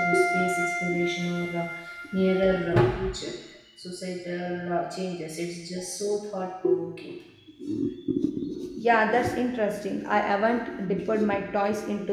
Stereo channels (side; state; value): both; identical; correlation 1.00